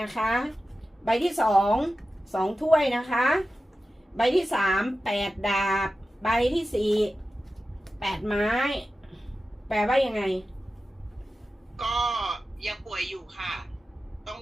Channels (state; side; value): normal; both; correlation 0.94